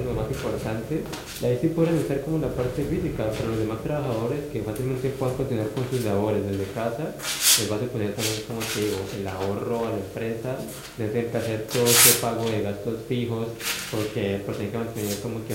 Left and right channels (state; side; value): identical; both; correlation 1.00